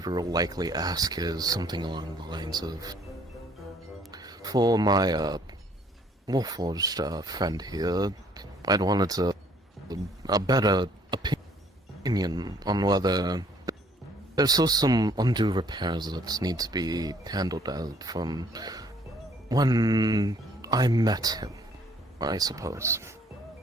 will likely ask is something along the lines of, for my Warforged friend here, I'd wanted a better opinion on whether there's still some undue repairs that need to be handled out from when I met him, I suppose.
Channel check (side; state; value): both; normal; correlation 0.61